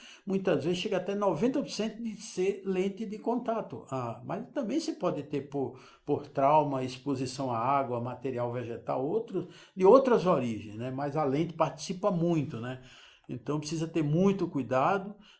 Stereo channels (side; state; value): both; identical; correlation 1.00